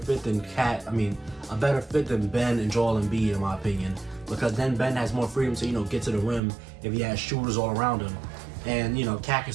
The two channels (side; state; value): left; drops out; at 6.4 s